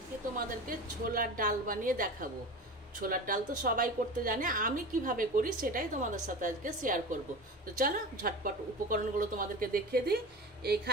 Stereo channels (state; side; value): normal; both; correlation 0.31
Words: তোমাদেরকে ছোলার ডাল বানিয়ে দেখাবো। ছোলার ডাল তো সবাই করতে জানে, আমি কিভাবে করি সেটাই তোমাদের সাথে আজকে শেয়ার করব। তো চলো ঝটপট উপকরণগুলো তোমাদেরকে দেখিয়ে দিই।